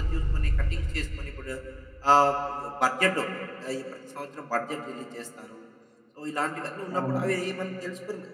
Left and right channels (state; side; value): identical; both; correlation 1.00